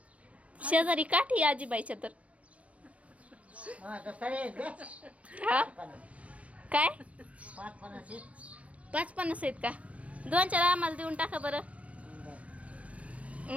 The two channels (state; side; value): late; left; 0.064 ms